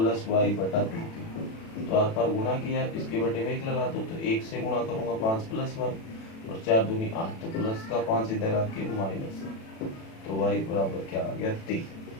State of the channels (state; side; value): late; right; 36 ms